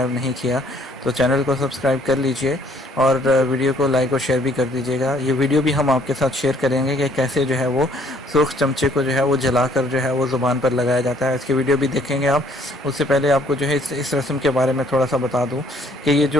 नहीं किया तो चैनल को सब्सक्राइब कर लीजिए और वीडियो को लाइक और शेयर भी कर दीजिएगा। ये वीडियो भी हम आपके साथ शेयर करेंगे कि कैसे जो है वो सुर्ख चमचे को जो है वो जलाकर जो है वो ज़ुबान पर लगाया जाता है। इसकी वीडियो भी देखेंगे आप। उससे पहले आपको जो है इस रस्म के बारे में थोड़ा सा बता दूँ कि ये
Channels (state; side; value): normal; both; correlation 0.62